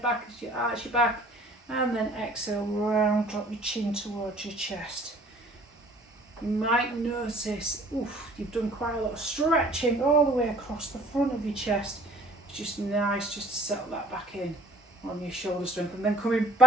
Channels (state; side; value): normal; both; correlation 0.53